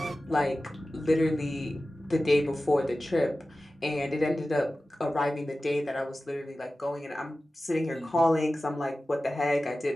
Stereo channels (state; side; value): normal; both; correlation 0.95